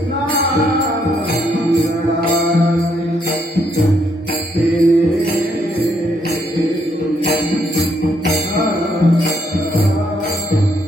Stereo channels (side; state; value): both; normal; correlation 0.73